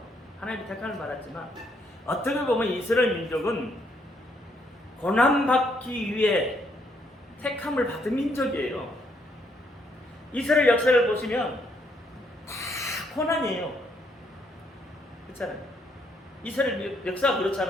하나님의 택함을 받았지만 어떻게 보면 이스라엘 민족은 고난받기 위해 택함을 받은 민족이에요. 이스라엘 역사를 보시면 다 고난이에요. 그렇잖아요. 이스라엘 역사가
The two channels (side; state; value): both; normal; correlation 0.72